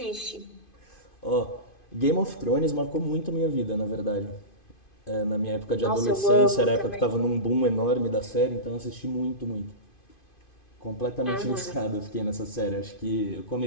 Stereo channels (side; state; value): right; late; 2.5 ms